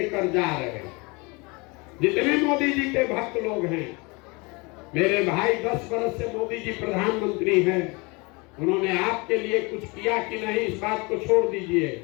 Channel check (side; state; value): right; quieter; 27.6 dB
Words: जा रहे हैं। जितने मोदी जी के भक्त लोग हैं, मेरे भाई 10 वर्ष से मोदी जी प्रधानमंत्री हैं, उन्होंने आपके लिए कुछ किया कि नहीं, इस बात को छोड़ दीजिए।